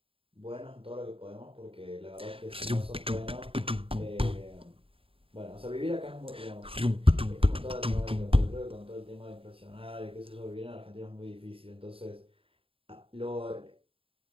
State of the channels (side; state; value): left; late; 0.27 ms